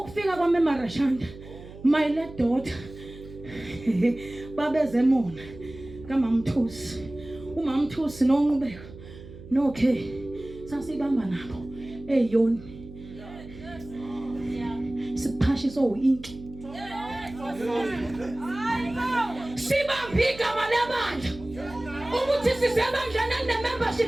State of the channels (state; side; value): noise; right; hum, 16 dB below the sound